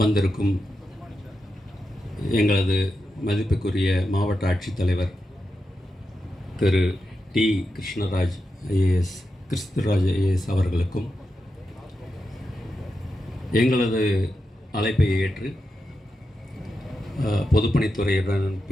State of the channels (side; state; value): both; normal; correlation 0.88